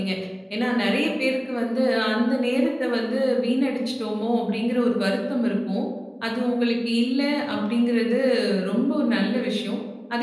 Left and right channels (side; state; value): both; identical; correlation 1.00